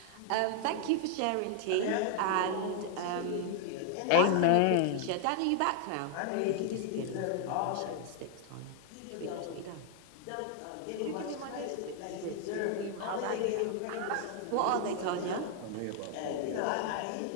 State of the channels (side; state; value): both; different; correlation 0.00